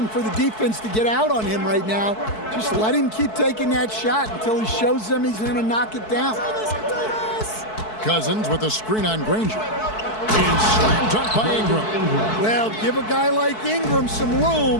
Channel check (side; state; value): right; late; 4.6 ms